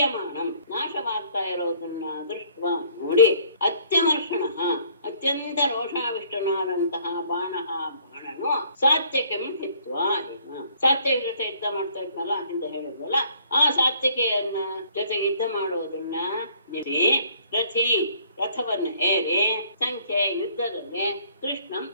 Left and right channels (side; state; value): both; inverted; correlation -0.60